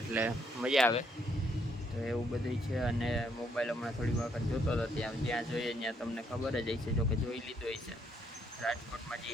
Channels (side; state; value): both; normal; correlation 0.71